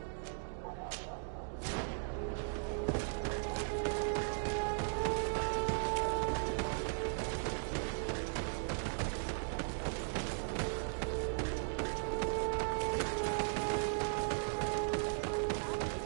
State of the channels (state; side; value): silent; left; digital silence